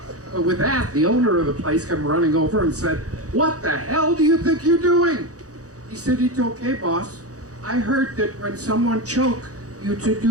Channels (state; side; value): late; left; 0.66 ms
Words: But with that, the owner of the place came running over and said, "What the hell do you think you're doing?" He said, "It's okay, boss. I heard that when someone choked, you to